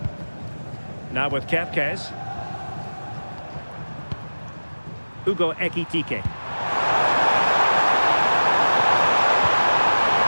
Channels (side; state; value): both; inverted; correlation -1.00